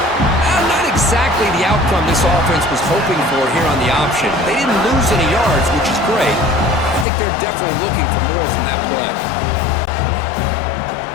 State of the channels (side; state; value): right; drops out; at 7.1 s